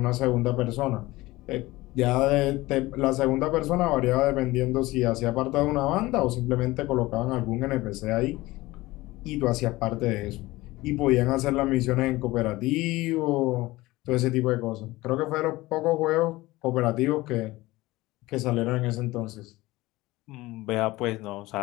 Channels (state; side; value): quieter; right; 19.3 dB